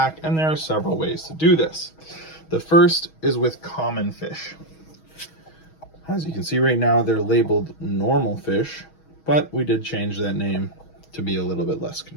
and there are several ways to do this. The first is with common fish. As you can see right now, they're labeled normal fish, but we did change that name to be a little bit less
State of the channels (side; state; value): right; late; 6.3 ms